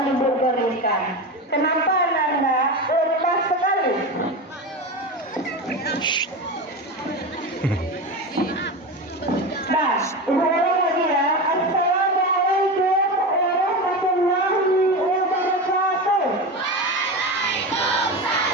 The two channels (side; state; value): both; normal; correlation 0.22